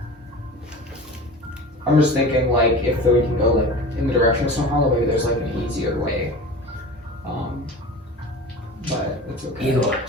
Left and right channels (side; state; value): both; normal; correlation 0.35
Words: I'm just thinking like if we can go like in the direction of Snowhollow, maybe there's like an easier way. But it's okay. Igor,